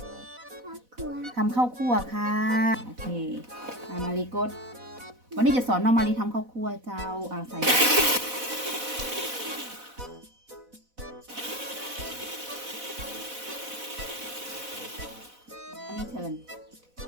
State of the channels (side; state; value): left; late; 4.0 ms